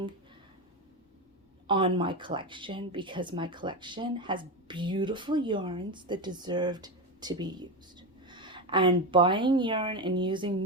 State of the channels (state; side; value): normal; both; correlation 0.15